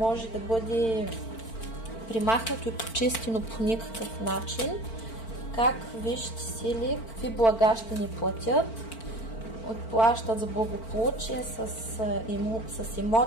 да бъде примахнато и почистено по никакъв начин. Как висшите сили, какви блага ще ни платят? Отплащат за благополучие с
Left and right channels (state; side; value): late; right; 4.4 ms